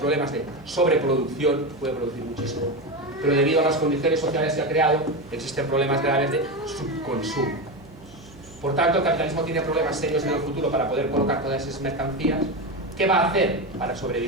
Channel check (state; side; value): noise; right; hum, 22 dB below the sound